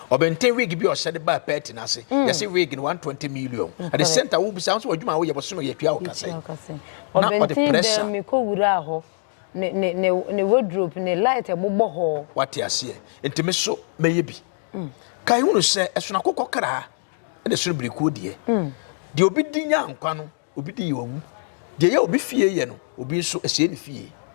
obentin wig bi o se de ba pet na se ye se wig in 120 million at the center wo bi sound so adwuma wo ye boso no ye twia wo kase obentin de me ko wura ho ne wardrobe ne light e bobbo ho what you see ntime so meye bi kai hunu se esuna kokokra e de so briku de de obi di nya nkwa no obi di yowu de ye obi fie ye no obi so ese ni fie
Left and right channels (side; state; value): right; silent; digital silence